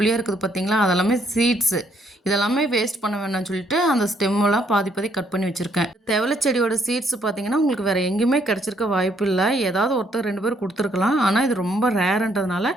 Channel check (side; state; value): both; normal; correlation 0.69